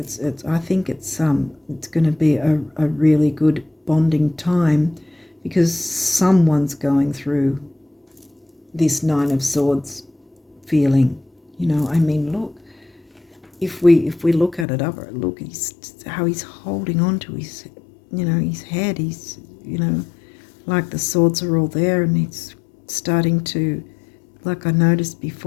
I think it's going to be a really good bonding time, because someone's going through this Nine of Swords feeling. Look, if we look at it up, look, how he's holding on to his, his head. He's, like the swords are all there, and he's starting to, like I noticed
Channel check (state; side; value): drops out; right; at 14.7 s